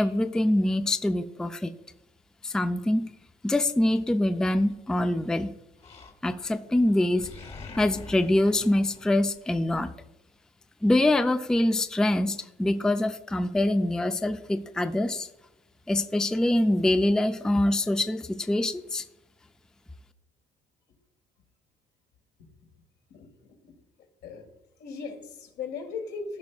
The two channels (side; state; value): both; normal; correlation 0.91